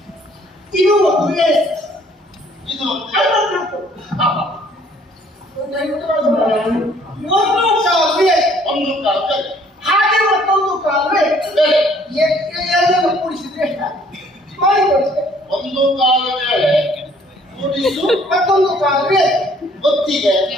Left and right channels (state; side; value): normal; both; correlation 0.60